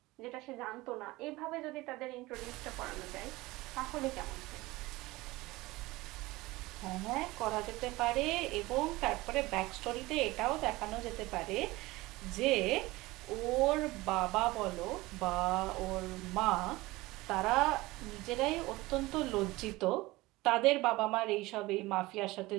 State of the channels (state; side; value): quieter; left; 20.3 dB